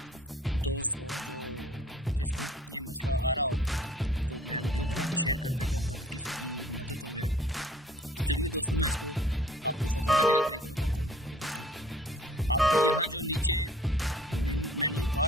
दोस्त हो जिसको ये मसला आ रहा हो, तो मैं वीडियो बना के शेयर कर देता हूँ ताकि किसी की मदद हो जाए। तो चलिए दोस्तों, मैं इसको आपको ख़त्म करने का तरीका बताता हूँ। ये देखें, आपने यहाँ जो नीचे मेन्यू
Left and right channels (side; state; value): both; normal; correlation 0.54